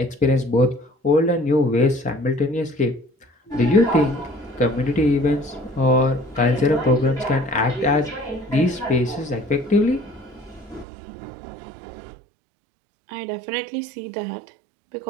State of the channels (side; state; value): left; drops out; at 10.9 s